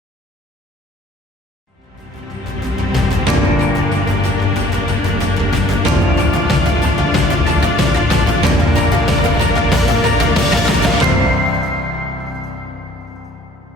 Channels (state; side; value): normal; both; correlation 0.57